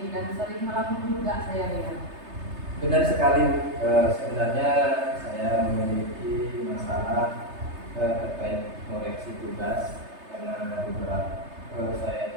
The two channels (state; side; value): late; left; 3.3 ms